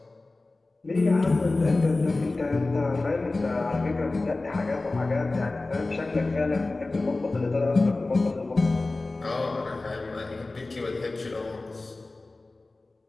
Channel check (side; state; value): right; quieter; 3.2 dB